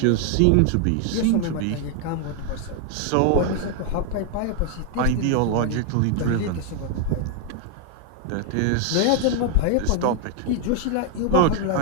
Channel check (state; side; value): different; both; correlation 0.00